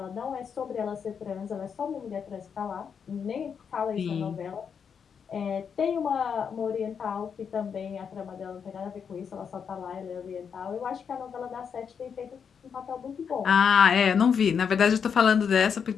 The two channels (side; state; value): right; quieter; 6.9 dB